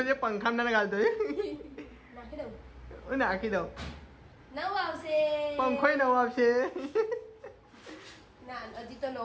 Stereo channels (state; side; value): identical; both; correlation 1.00